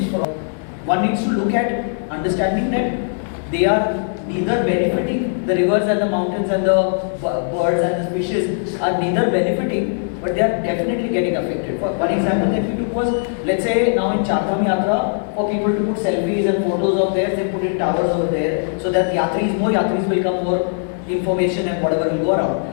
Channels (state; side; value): silent; right; digital silence